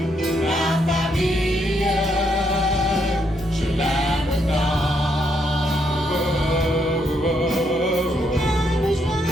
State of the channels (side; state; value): both; normal; correlation 0.76